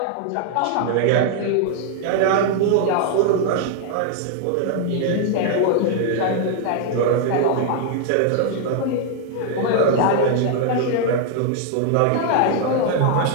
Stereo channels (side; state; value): both; different; correlation 0.00